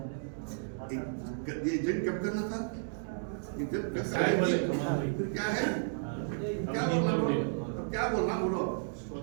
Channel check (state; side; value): silent; left; digital silence